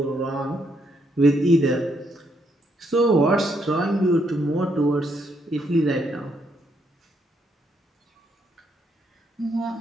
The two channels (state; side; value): normal; both; correlation 0.75